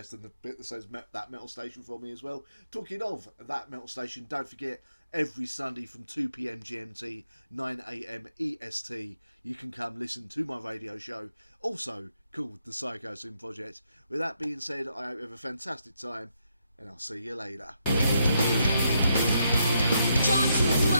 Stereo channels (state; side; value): inverted; both; correlation -0.78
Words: and the bit that says That Metal Station for me as well. Talking of That Metal Station, don't forget, every Sunday from 2 PM GMT, 9 AM EST, you can come listen to my radio show, also called the Psychosin Project. With that being said, I hope you have a fantastic time, and I'll see you later. Drawn